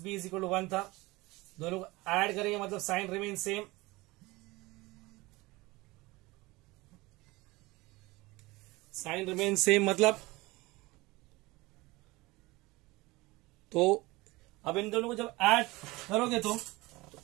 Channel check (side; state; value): left; quieter; 21.7 dB